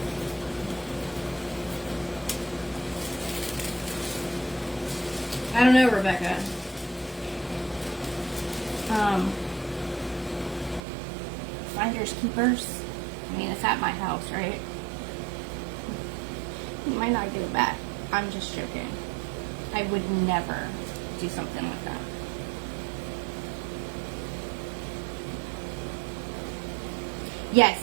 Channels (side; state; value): left; drops out; at 10.8 s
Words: I don't know, Rebecca. Finders keepers. I mean, it's at my house, right? You might not give it back. I'm just joking. I would never do something like that.